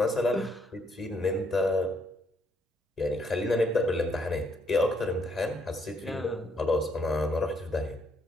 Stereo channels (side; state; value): both; normal; correlation 0.72